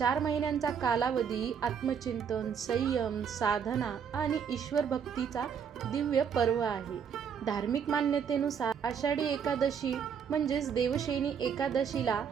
महिन्यांचा कालावधी आत्मचिंतन, संयम, साधना आणि ईश्वर भक्तीचा दिव्य पर्व आहे. धार्मिक मान्यतेनुसार आषाढी एकादशी म्हणजेच देवशयनी एकादशीला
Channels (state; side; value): quieter; left; 7.3 dB